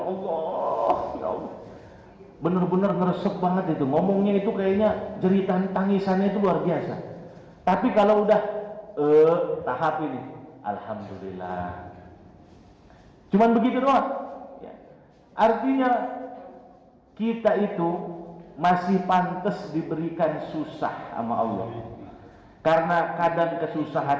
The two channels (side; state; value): both; identical; correlation 1.00